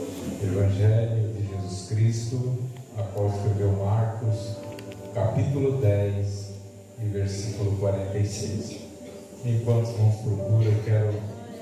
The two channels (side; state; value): both; identical; correlation 1.00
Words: Evangelho de Jesus Cristo, a qual escreveu Marcos, capítulo 10 e versículo 46. Enquanto os irmãos procuram, eu quero